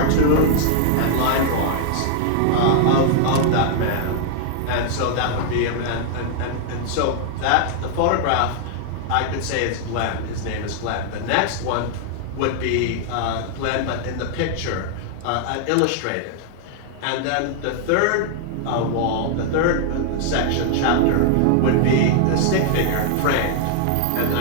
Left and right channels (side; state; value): both; different; correlation 0.00